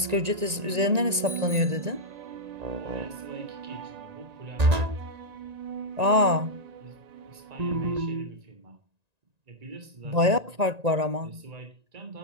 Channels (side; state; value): left; late; 1.9 ms